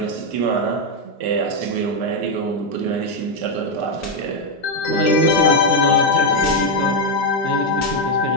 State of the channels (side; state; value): both; normal; correlation 0.03